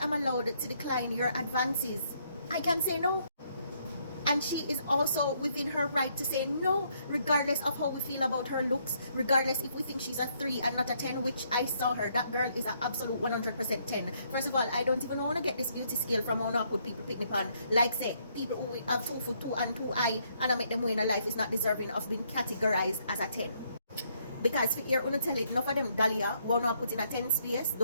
allowed to decline your advances. I can say no. And she is also within her right to say no, regardless of how we feel about her looks, regardless if we think she's a 3 and not a 10, which I saw her. That girl is an absolute 100% 10. First of all, I don't even want to get this beauty scale from how I put people picnic on. Like say, people who have 2 foot 2 and 2 eye, and I make them win a life is not deserving of being categorized as a 10. Because if you're going to tell it, enough of them dahlia, won't know put in a 10 space,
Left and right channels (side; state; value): both; inverted; correlation -0.71